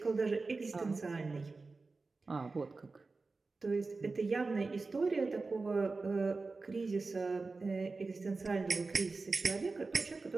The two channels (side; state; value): left; quieter; 3.8 dB